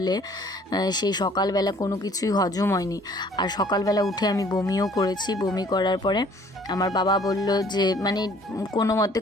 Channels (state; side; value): normal; both; correlation 0.56